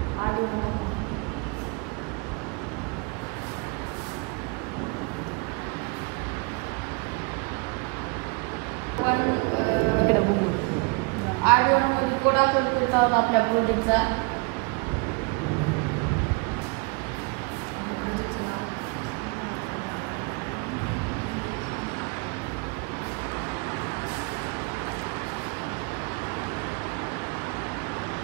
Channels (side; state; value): left; quieter; 30.8 dB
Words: कोड आपण करत आहोत आपल्या प्रोजेक्टचा.